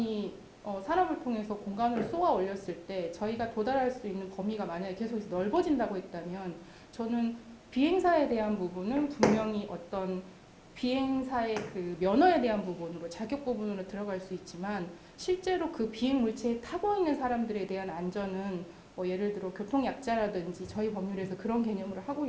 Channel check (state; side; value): identical; both; correlation 1.00